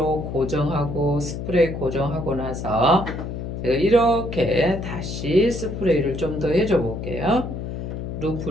고정하고 스프레이 고정하고 나서 제가 이렇게 다시 스프레이를 좀 더 해줘 볼게요.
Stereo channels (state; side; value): noise; left; hum, 6 dB below the sound